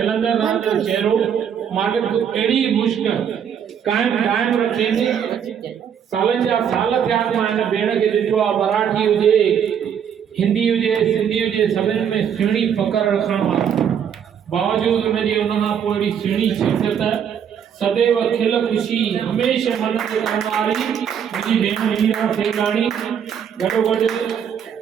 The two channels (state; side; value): quieter; left; 8.2 dB